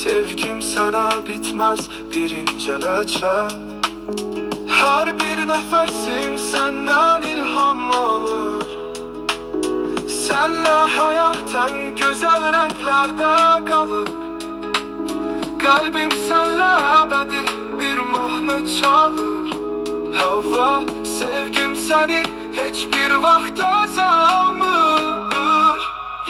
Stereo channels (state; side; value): identical; both; correlation 1.00